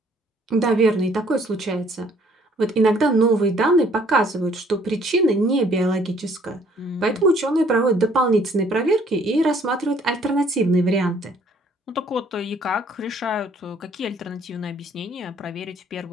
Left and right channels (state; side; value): normal; both; correlation 0.61